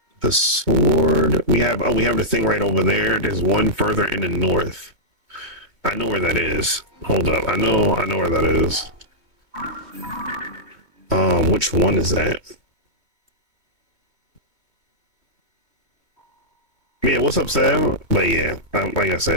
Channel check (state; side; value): late; right; 2.2 ms